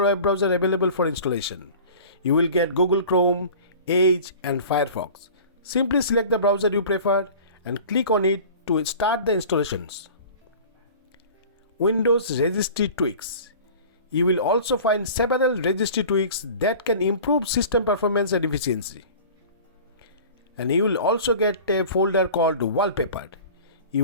web browsers available for installation. You will get Google Chrome, Edge and Firefox. Simply select the browser you prefer and click on it to start the installations. Windows registry tweaks. You will also find several registry tweaks that can improve system performance and efficiency. And you will also get a folder called wallpaper. You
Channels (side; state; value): both; inverted; correlation -0.41